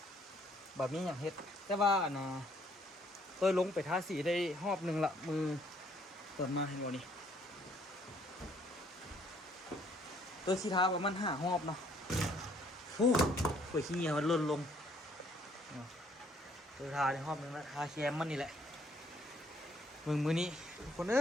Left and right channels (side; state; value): both; normal; correlation 0.65